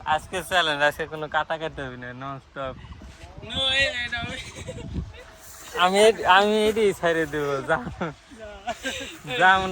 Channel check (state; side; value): identical; both; correlation 1.00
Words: আজকে চ্যালেঞ্জ, আজকে কোনো কাটা কাটতে হবে না, নন স্টপ। আমি আমি এটি ছেড়ে দেবো, যা